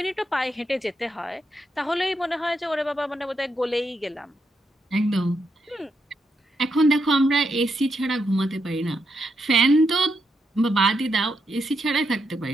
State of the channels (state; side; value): normal; both; correlation 0.82